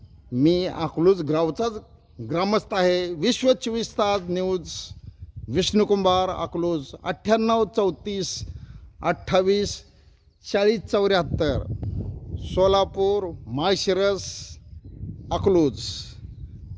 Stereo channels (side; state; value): both; identical; correlation 1.00